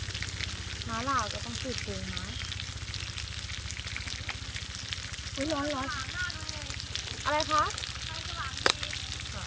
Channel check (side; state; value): both; identical; correlation 1.00